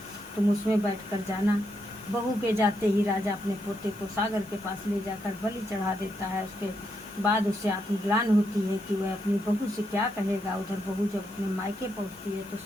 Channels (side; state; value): both; normal; correlation 0.80